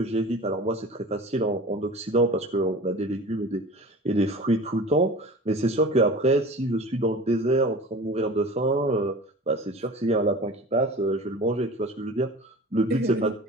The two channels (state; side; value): normal; both; correlation 0.39